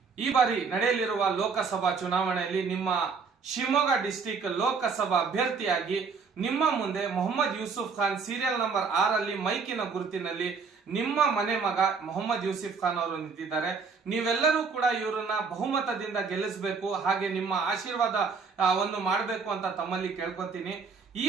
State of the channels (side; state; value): left; quieter; 5.2 dB